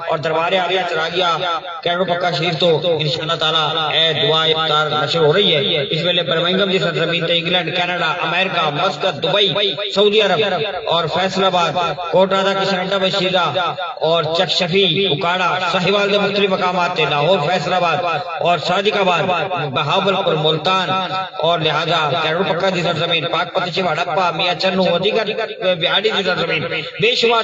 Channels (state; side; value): identical; both; correlation 1.00